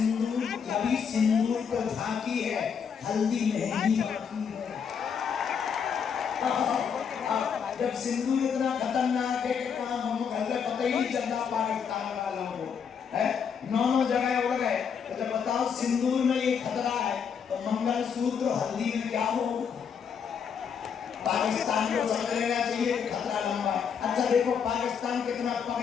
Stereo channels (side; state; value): right; quieter; 6.9 dB